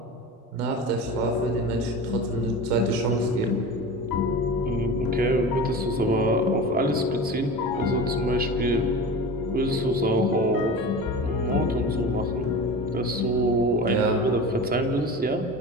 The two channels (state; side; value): normal; both; correlation 0.32